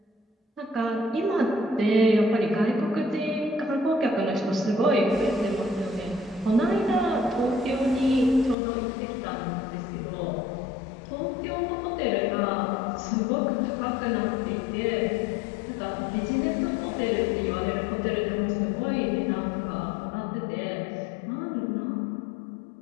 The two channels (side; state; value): right; drops out; at 8.6 s